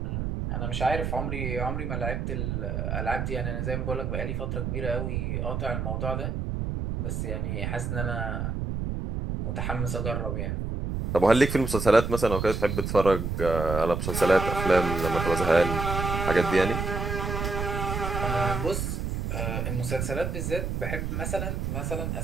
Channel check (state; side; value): noise; right; rumble, 2 dB below the sound